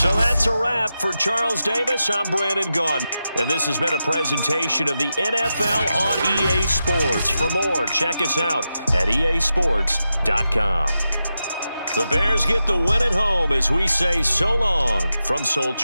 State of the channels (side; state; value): both; inverted; correlation -0.89